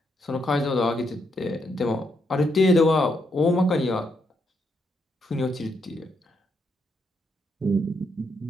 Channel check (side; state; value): both; normal; correlation 0.78